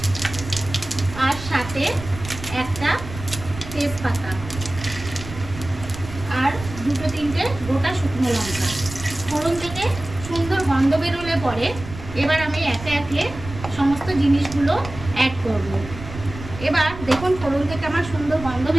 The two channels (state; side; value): noise; right; rumble, 12 dB below the sound